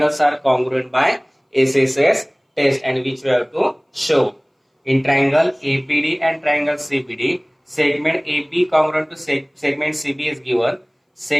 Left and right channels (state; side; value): identical; both; correlation 1.00